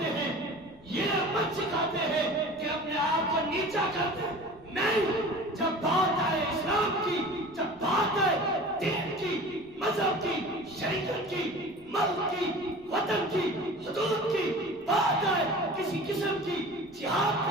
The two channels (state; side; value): noise; left; rumble, 26 dB below the sound